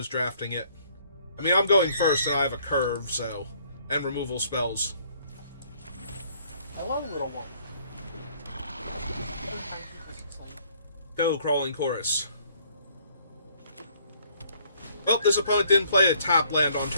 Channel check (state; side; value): inverted; both; correlation -0.63